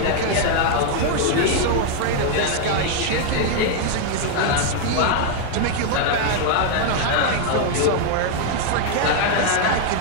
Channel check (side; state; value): both; different; correlation 0.00